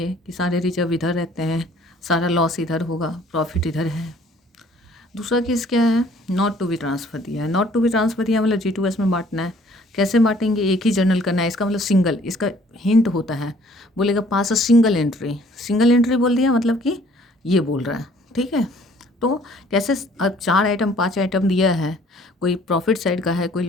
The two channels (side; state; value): both; normal; correlation 0.57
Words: कि सारे रिजर्व इधर रहते हैं, सारा लॉस इधर होगा, प्रॉफिट इधर है। दूसरा केस क्या है, नॉट टू बी ट्रांसफ़र दिया है। नॉट टू बी ट्रांसफ़र दिया मतलब G2S में बांटना है। कैसे बांटेंगे, एक ही जर्नल करना है, इसका मतलब सिंगल, इसका हिंट होता है, बोलेगा पास अ सिंगल एंट्री बोल दिया मतलब कि ये बोल रहा है, ठीक है। तो कैसे, अब 4 आइटम 5 आइटम दिया है, कोई प्रॉफिट साइड का है, कोई